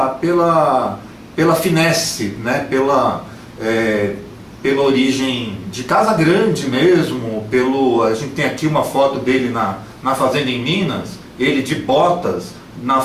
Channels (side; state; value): both; identical; correlation 1.00